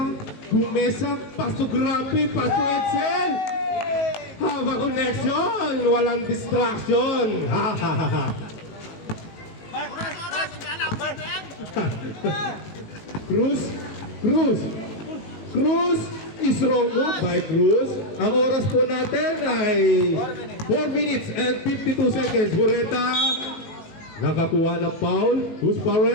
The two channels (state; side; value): late; right; 18 ms